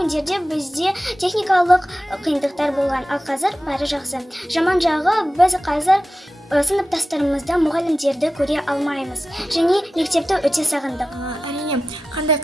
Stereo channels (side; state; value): both; normal; correlation 0.94